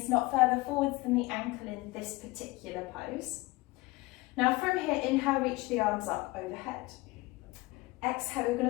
not further forwards than the ankle in this particular pose. Now from here, inhale, reach the arms up overhead. Exhale, we're going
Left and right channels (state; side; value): quieter; right; 21.9 dB